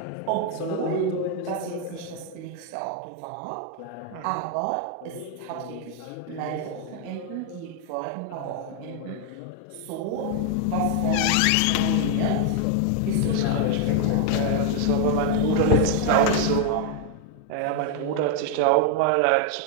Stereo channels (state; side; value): different; both; correlation 0.00